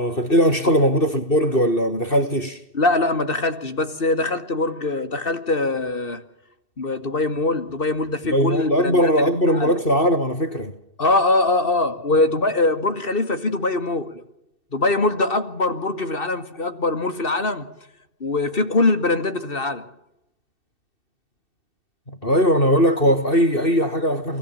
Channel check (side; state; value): right; late; 2.7 ms